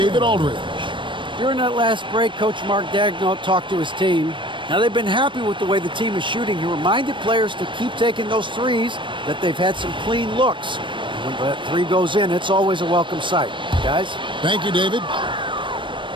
Aldridge. During that last break, Coach Mark Daigneault talked to his team. Now, they've been happy with the way the team is shooting. He reminded players to keep taking those threes, that they've had some clean looks. When that 3 goes in, it's always a welcome sight. Guys? Thank you, David.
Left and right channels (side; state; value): left; late; 0.24 ms